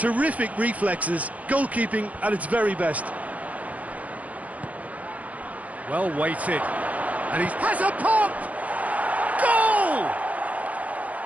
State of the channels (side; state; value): left; late; 0.070 ms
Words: reflexes. Goalkeeping at its very best. Well weighted, and he has a pop! Goal!